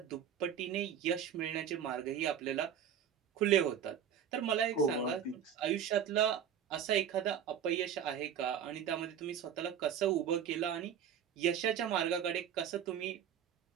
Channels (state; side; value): quieter; left; 8.7 dB